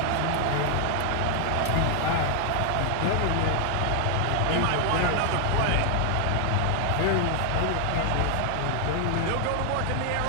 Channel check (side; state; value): both; different; correlation 0.00